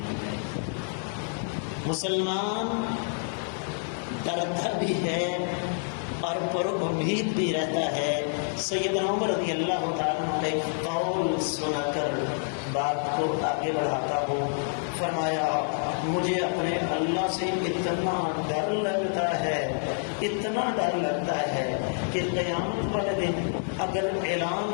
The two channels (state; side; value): silent; right; 59 dB below the other